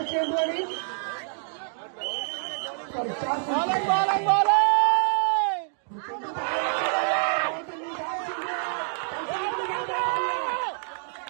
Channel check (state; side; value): silent; left; digital silence